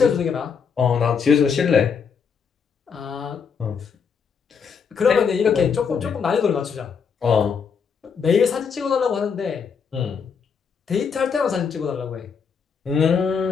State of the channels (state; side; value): quieter; right; 6.3 dB